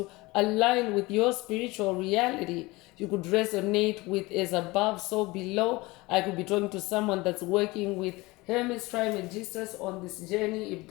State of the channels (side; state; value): right; quieter; 22.1 dB